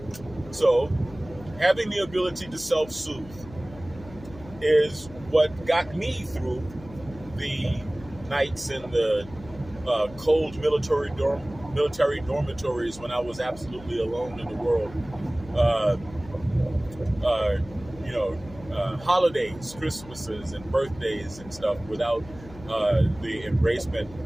So having the ability to self-soothe is what got me through the nights in the cold military dormitories when I was absolutely alone in the world. Holidays, Christmases, and birthdays and stuff without the embracement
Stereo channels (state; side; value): noise; left; hum, 18 dB below the sound